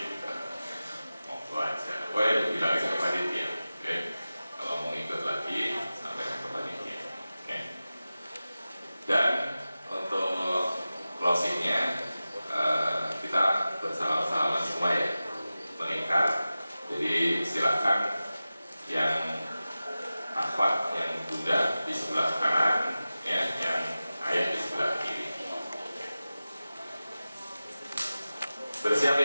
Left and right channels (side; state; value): both; inverted; correlation -0.96